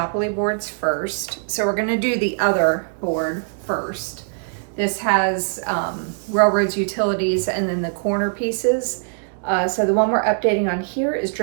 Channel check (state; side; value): silent; left; digital silence